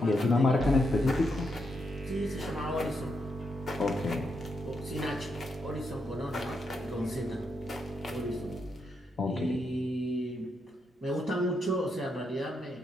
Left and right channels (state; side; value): normal; both; correlation 0.81